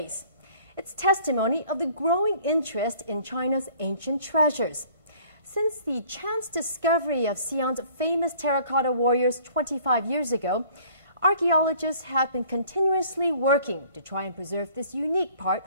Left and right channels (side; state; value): both; inverted; correlation -0.54